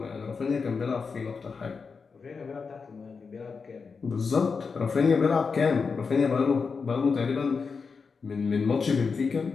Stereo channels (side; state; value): right; quieter; 5.1 dB